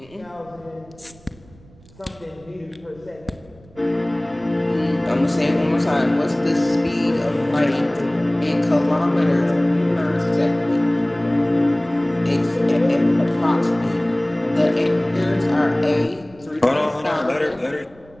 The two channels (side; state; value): right; noise; rumble, 25 dB below the sound